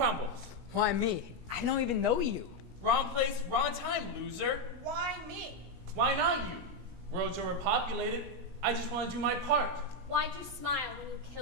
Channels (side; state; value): left; late; 17 ms